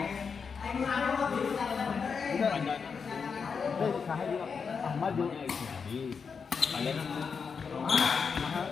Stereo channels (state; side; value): quieter; right; 5.8 dB